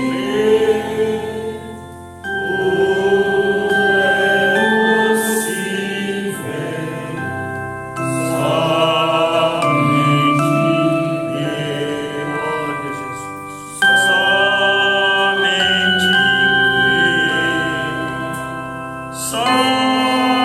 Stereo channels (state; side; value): identical; both; correlation 1.00